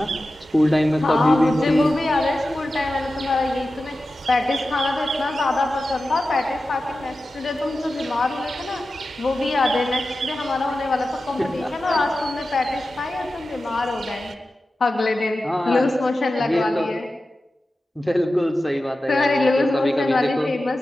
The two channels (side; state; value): both; normal; correlation 0.93